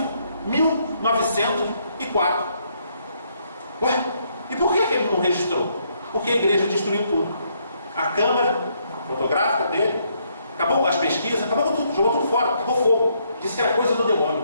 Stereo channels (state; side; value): inverted; both; correlation -0.73